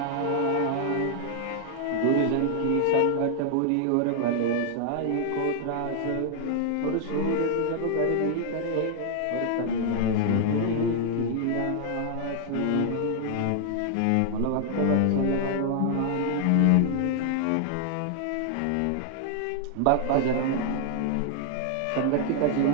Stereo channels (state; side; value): different; both; correlation 0.00